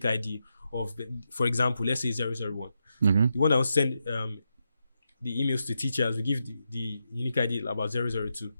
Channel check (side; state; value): both; inverted; correlation -0.85